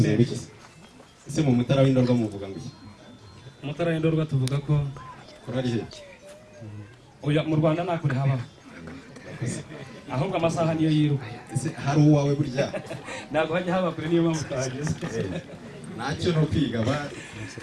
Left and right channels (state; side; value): identical; both; correlation 1.00